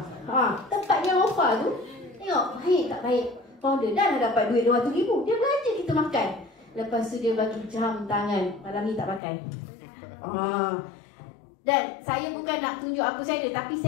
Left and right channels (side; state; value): right; drops out; at 9.2 s